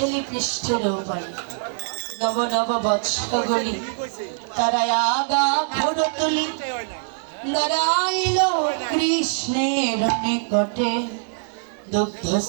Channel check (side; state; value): left; silent; 63 dB below the other